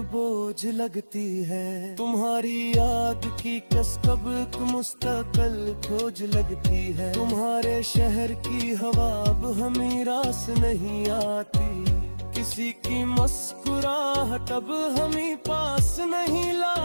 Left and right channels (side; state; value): both; inverted; correlation -1.00